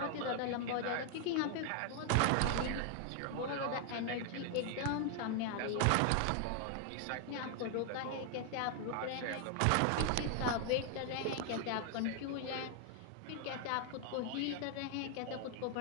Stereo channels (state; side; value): different; both; correlation 0.00